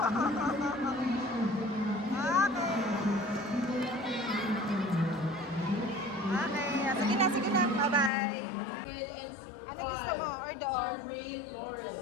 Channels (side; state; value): right; drops out; at 8.1 s